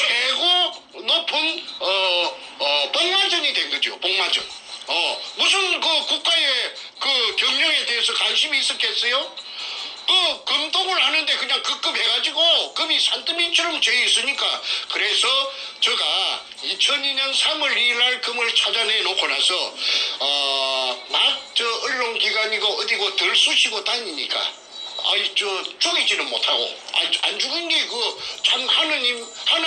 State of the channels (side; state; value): both; identical; correlation 1.00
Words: 높은 복마전이 된 거죠. 복마전. 무슨 그 국가의 그 경영에 대해서 관심이 있었겠어요? 그 금독을 하는데 그냥 급급해가지고 금이 산더미처럼 재 있으니까 그래서 제가 2002년 3월 2일 날 금을 찾아내 놓고 나서 언론기관이고 어디고 덜 쑤시고 다니니까 죽이지는 못하고 안 죽은 게 참